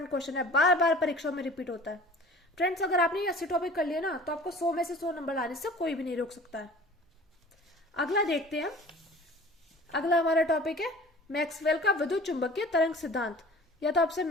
क्वेश्चन है, बार बार परीक्षा में रिपीट होता है। फ्रेंड्स अगर आपने ये 80 टॉपिक कर लिए ना, तो आपको 100 में से 100 नंबर लाने से कोई भी नहीं रोक सकता है। अगला देखते हैं, अगला हमारा टॉपिक है मैक्सवेल का विद्युत चुंबकीय तरंग सिद्धांत। या तो आपसे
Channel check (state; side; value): normal; both; correlation 0.45